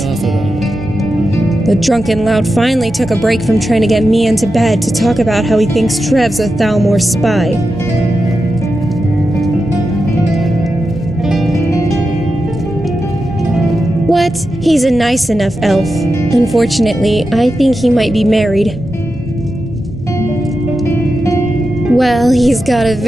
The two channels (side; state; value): both; normal; correlation 0.90